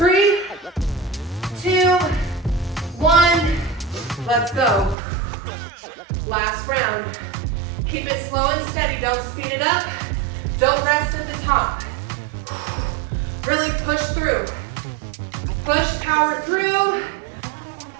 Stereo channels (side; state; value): left; drops out; at 5.0 s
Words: 2, 1. Let's go. Last round. Keep it slow and steady. Don't speed it up. Don't rest at the top. Really push through. Push, power through.